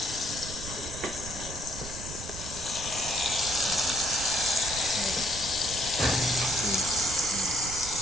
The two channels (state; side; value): noise; right; rumble, 10 dB below the sound